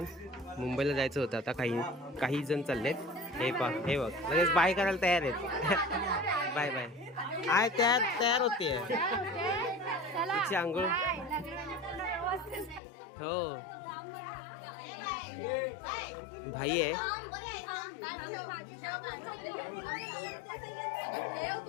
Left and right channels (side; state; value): right; drops out; at 12.8 s